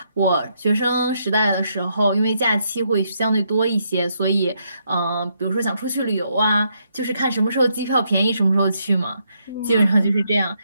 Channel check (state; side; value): inverted; both; correlation -0.76